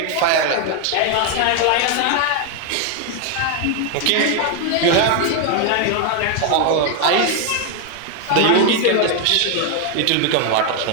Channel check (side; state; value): both; different; correlation 0.01